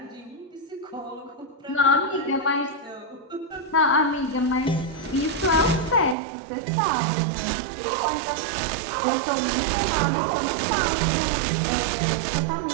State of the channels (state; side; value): drops out; left; at 6.2 s